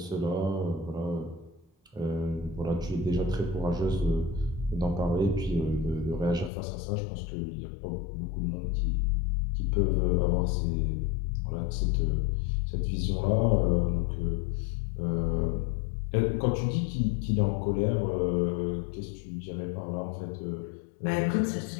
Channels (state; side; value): drops out; right; at 6.5 s